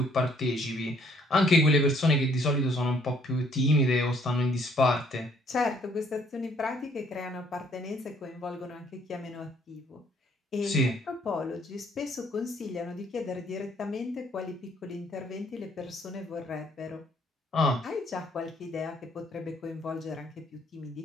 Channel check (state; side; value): normal; both; correlation 0.64